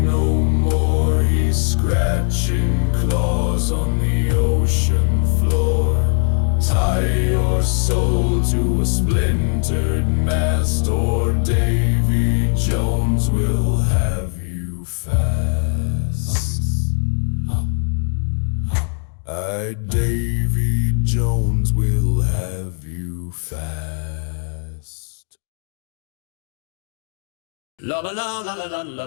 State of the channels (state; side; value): silent; right; 58 dB below the other